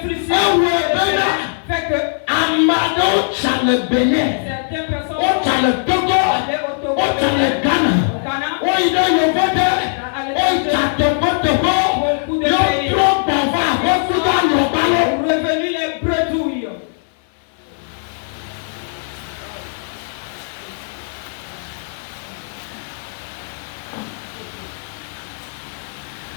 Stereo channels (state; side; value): silent; right; digital silence